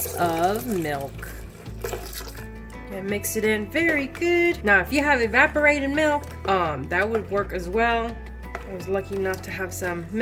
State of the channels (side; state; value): both; identical; correlation 1.00